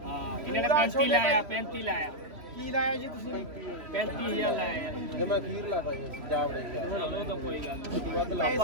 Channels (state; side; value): late; left; 3.1 ms